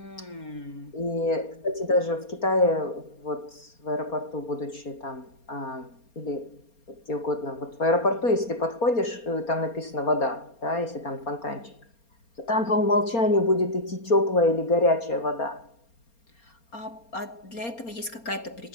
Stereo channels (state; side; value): late; right; 4.3 ms